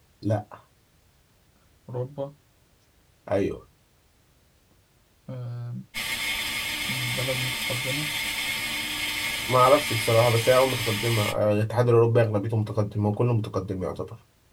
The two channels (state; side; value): identical; both; correlation 1.00